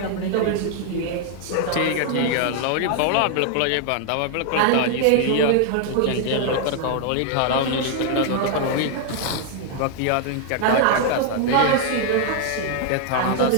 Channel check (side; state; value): both; different; correlation 0.00